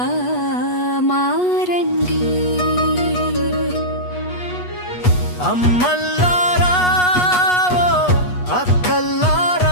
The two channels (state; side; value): late; right; 8.2 ms